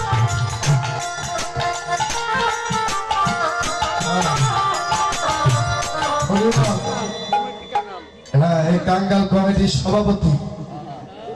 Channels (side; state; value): both; identical; correlation 1.00